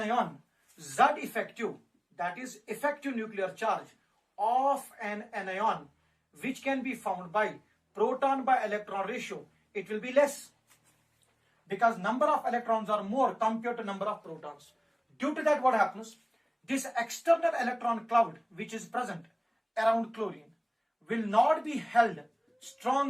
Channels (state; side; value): identical; both; correlation 1.00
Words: Z effective, that is effective nuclear charge of an anion, which can be found by proton by electron ratio, it will be less, because number of electrons are more compared to number of protons. Due to that, what happens? This external electron cloud which is present around chlorine will not be held